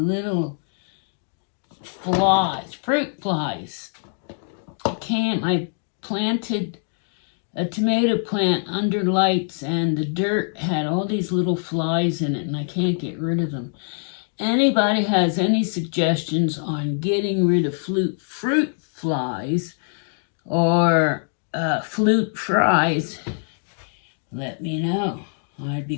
flies, fruit flies. I planted a tomato plant under lights and the dirt had all these little flies in it and I can't get rid of them. Anybody has any suggestions on getting rid of fruit flies or fruit flies, let me know. I'd be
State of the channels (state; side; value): silent; right; 63 dB below the other